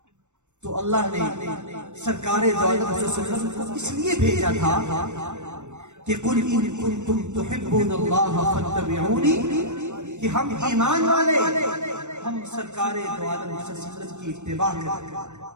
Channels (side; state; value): left; late; 0.84 ms